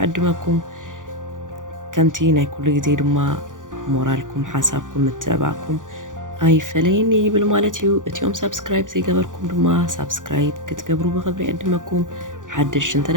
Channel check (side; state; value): left; late; 0.88 ms